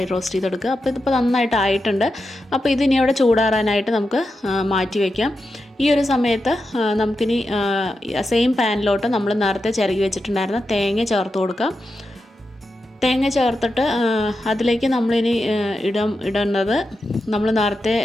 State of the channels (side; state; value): both; normal; correlation 0.89